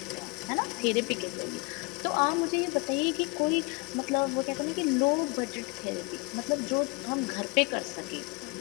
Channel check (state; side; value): quieter; right; 29.2 dB